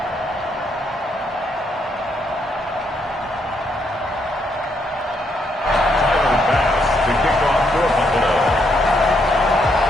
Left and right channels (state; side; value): normal; both; correlation 0.75